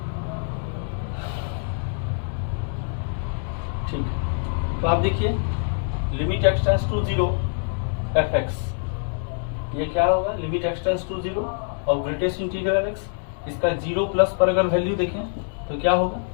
ठीक है। तो आप देखिए limit x tends to 0 fx, ये क्या होगा, लिमिट x टेंड्स टू 0 और ग्रेटेस्ट इंटीग्रल x, इसका 0 प्लस पर अगर वैल्यू देखें तो क्या होगा,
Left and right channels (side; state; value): right; silent; 62 dB below the other